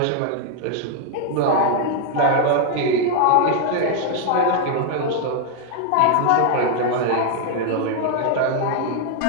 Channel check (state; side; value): different; both; correlation 0.00